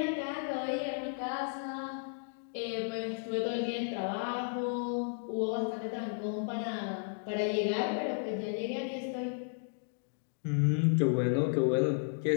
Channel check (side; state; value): right; silent; digital silence